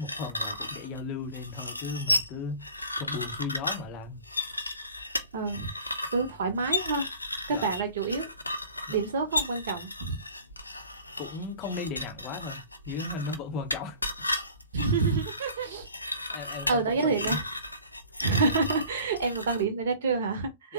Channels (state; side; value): inverted; both; correlation -0.47